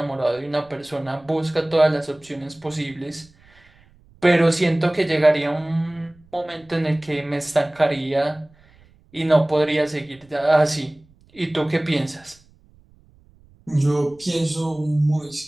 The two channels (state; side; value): noise; right; rumble, 29 dB below the sound